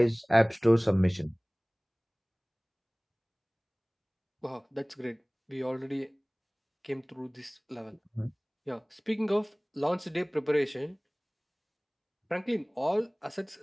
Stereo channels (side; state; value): both; identical; correlation 1.00